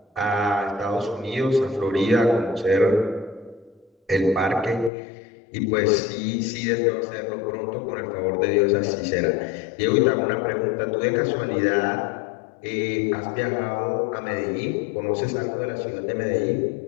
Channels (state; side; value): drops out; right; at 4.9 s